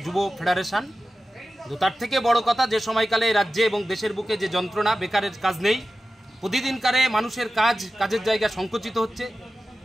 যুব ফেডারেশন। তো তার থেকে বড় কথা, যে সময়কালে রাজ্যে এবং দেশের বুকে যে যন্ত্রণা, বেকারের কাজ নেই, প্রতিদিনকারে মানুষের কাজের জায়গা সংকুচিত হচ্ছে,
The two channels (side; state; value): both; normal; correlation 0.94